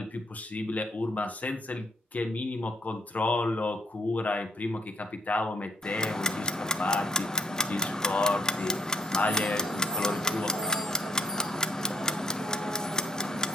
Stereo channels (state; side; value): normal; both; correlation 0.62